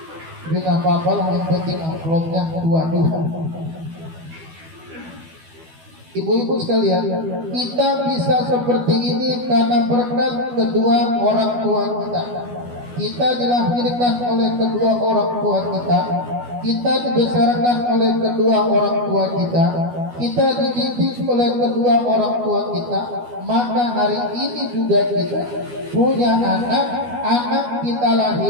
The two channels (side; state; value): left; late; 12 ms